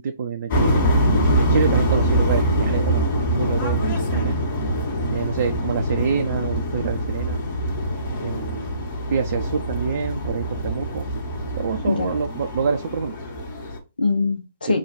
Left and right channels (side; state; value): both; inverted; correlation -0.58